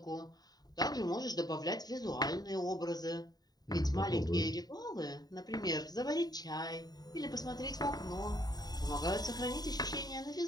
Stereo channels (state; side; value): late; right; 0.19 ms